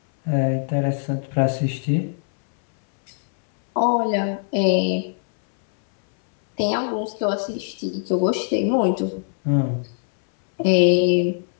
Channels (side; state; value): right; silent; 65 dB below the other